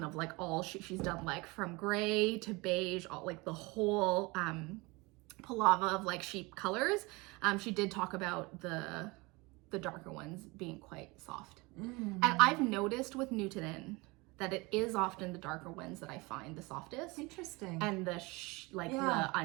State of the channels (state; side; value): quieter; left; 24.9 dB